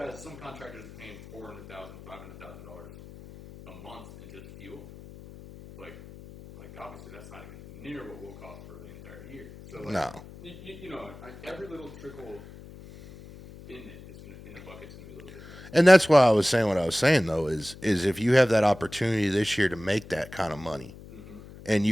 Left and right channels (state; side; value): noise; left; hum, 18 dB below the sound